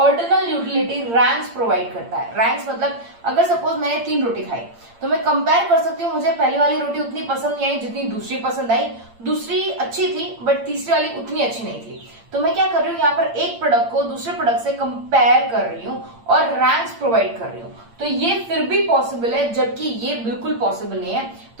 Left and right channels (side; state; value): left; late; 8.7 ms